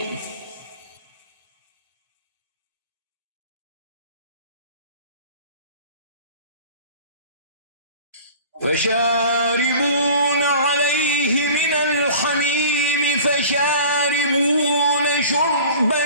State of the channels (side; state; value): both; inverted; correlation -0.42